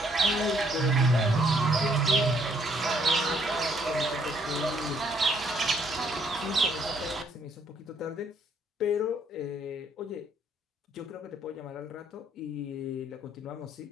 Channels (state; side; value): normal; both; correlation 0.68